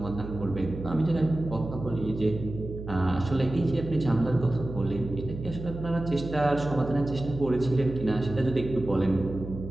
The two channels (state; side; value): noise; right; hum, 10 dB below the sound